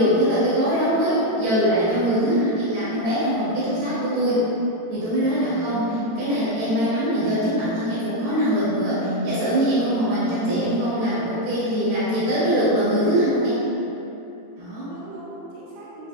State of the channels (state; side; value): late; left; 18 ms